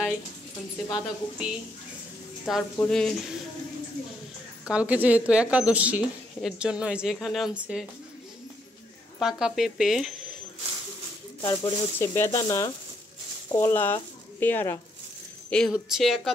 আনছে, বাঁধাকপি, তারপরে কালকে যেহেতু একাদশী এর জন্য এই যে এখানে আনছে পাকা পেঁপে, তারপরে হচ্ছে বেদানা, কলা, পেয়ারা। এই হচ্ছে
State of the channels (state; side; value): normal; both; correlation 0.74